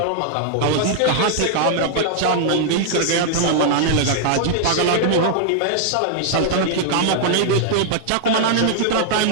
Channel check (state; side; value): different; both; correlation -0.01